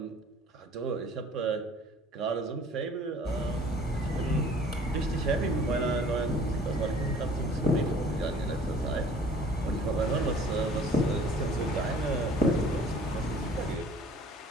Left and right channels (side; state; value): both; normal; correlation 0.51